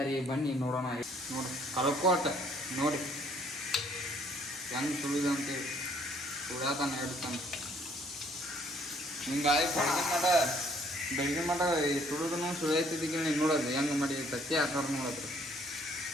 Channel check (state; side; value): normal; both; correlation 0.62